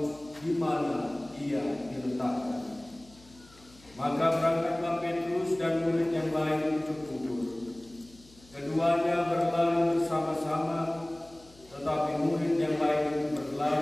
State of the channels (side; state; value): left; noise; hum, 25 dB below the sound